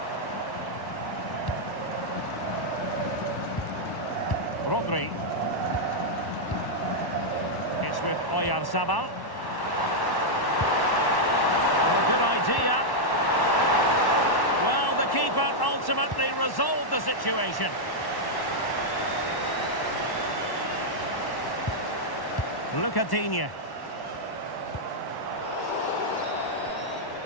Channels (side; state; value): right; late; 1.1 ms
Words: Rodri. It's with Oyarzabal. Oh, good idea. Well, the keeper ultimately resolved the situation. Lucadinha.